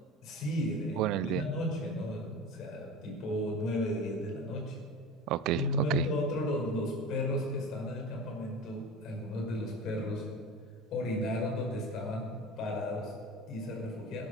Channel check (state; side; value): normal; both; correlation 0.32